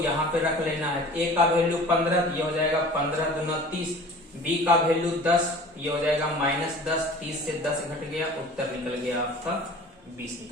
पे रख लेना है। a का वैल्यू 15, ये हो जाएगा 15 दूना 30। b का वैल्यू 10, ये हो जाएगा -10। 30 से 10 घट गया, उत्तर निकल गया आपका 20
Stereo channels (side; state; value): both; normal; correlation 0.43